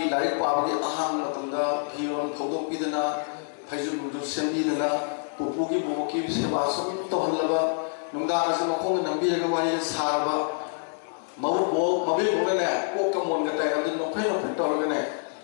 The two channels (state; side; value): silent; right; digital silence